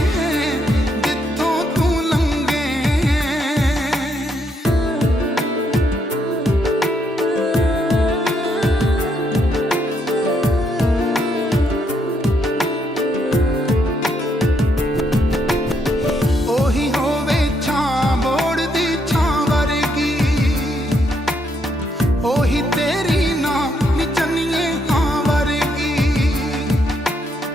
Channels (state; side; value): normal; both; correlation 0.75